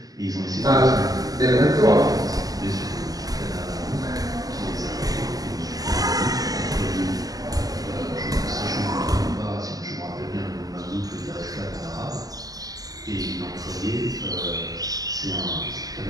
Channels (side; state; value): left; late; 0.17 ms